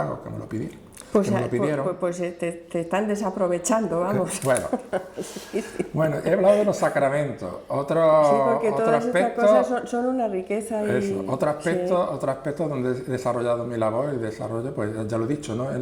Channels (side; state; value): both; identical; correlation 1.00